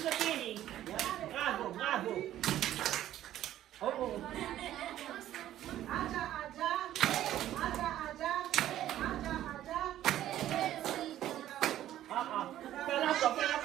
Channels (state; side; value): quieter; left; 12.7 dB